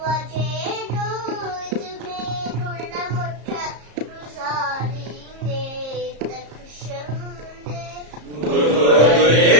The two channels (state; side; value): late; left; 34 ms